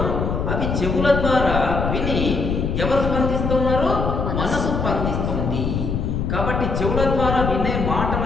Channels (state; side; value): noise; left; rumble, 1 dB below the sound